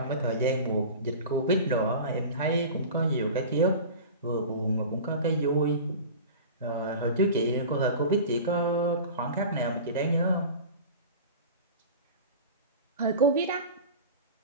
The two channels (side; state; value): both; inverted; correlation -0.34